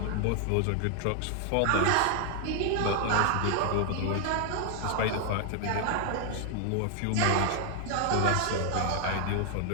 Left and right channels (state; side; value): different; both; correlation 0.00